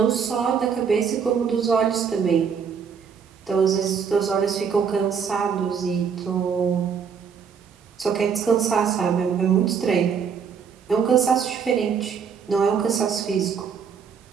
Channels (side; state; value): left; quieter; 6.7 dB